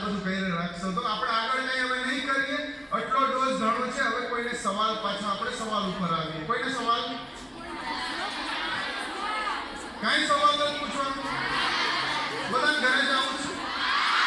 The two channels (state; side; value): identical; both; correlation 1.00